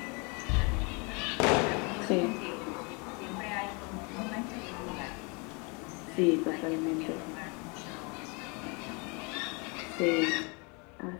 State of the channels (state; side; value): quieter; right; 31.5 dB